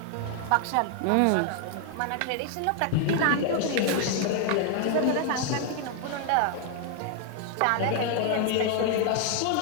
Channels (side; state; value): both; different; correlation 0.00